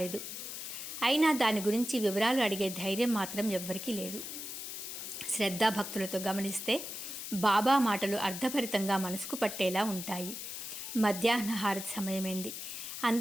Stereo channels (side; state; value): left; noise; hiss, 7 dB below the sound